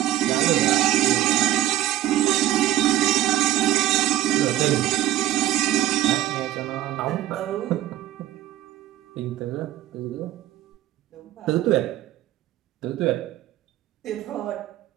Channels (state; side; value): quieter; left; 13.9 dB